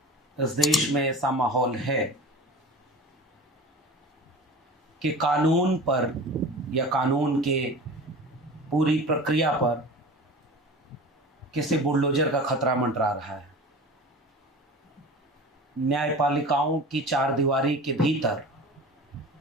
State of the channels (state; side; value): normal; both; correlation 0.36